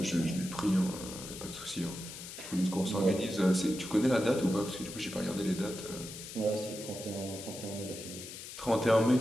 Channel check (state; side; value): noise; left; hiss, 11 dB below the sound